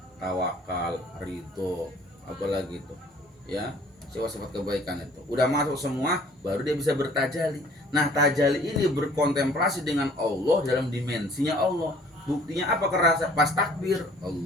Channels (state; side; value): normal; both; correlation 0.55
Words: tawakal, ridho, apalagi itu. Ya, sifat-sifat kebaikan itu. Udah masuk semua, baru dia bisa bertajali. Nah, tajali ini berkontemplasi dengan Allah dalam dimensinya Allah. Buktinya apa? Kerasa pas takbir,